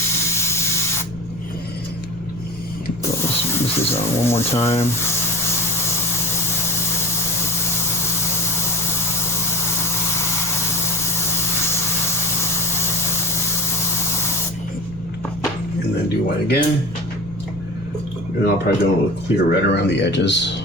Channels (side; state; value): left; noise; rumble, 16 dB below the sound